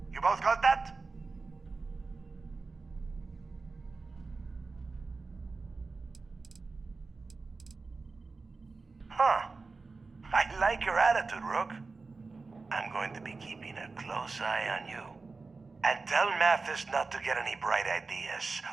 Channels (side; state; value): left; quieter; 4.0 dB